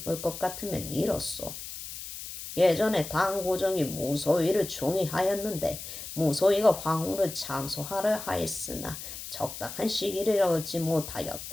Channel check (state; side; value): noise; left; hiss, 10 dB below the sound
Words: 것 같으면 이렇소. 예전에 당고정이 무소위를 총애하였는데 무소위가 황후를 참소하려 하였으나 적당한 시기를 얻지